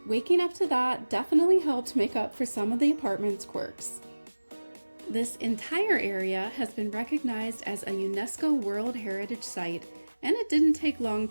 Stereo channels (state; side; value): inverted; both; correlation -1.00